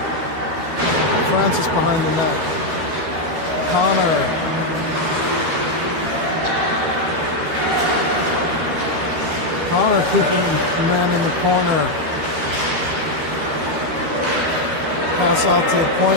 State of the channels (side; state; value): left; late; 13 ms